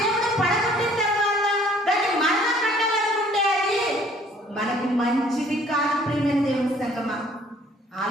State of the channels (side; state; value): both; normal; correlation 0.57